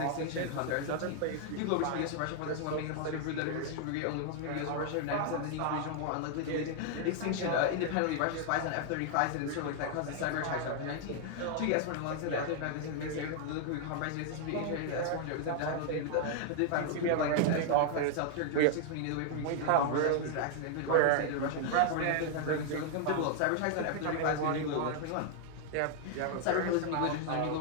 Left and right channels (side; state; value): both; different; correlation 0.00